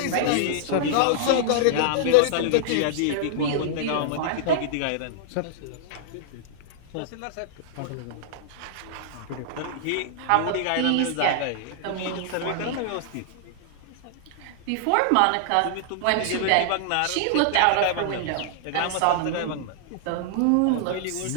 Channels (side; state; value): both; different; correlation -0.01